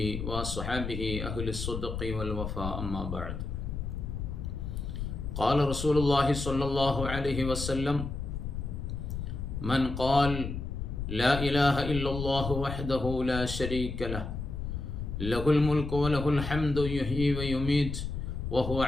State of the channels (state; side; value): noise; left; rumble, 5 dB below the sound